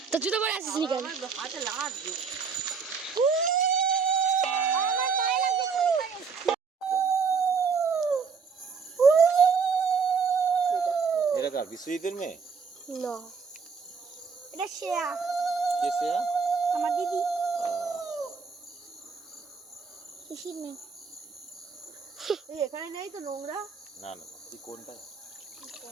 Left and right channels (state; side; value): quieter; left; 5.5 dB